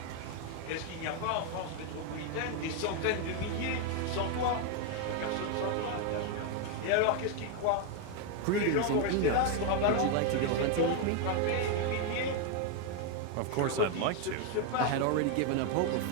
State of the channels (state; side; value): different; both; correlation 0.01